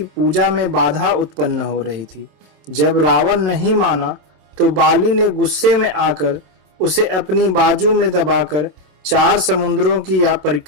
में बाधा उत्पन्न हो रही थी। जब रावण नहीं माना तो बाली ने गुस्से में आकर उसे अपनी बाजू में दबाकर 4 समुद्रों की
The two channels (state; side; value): late; left; 27 ms